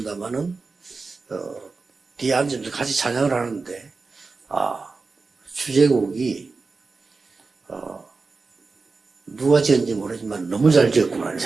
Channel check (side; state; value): left; quieter; 4.2 dB